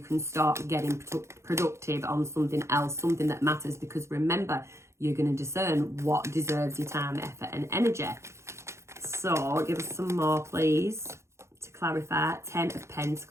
start getting productive on something else, something that matters. Because remember, you're going to discern what deserves your time, effort and energy. So give us some more, please, to clarify. 10 of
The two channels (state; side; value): late; left; 0.13 ms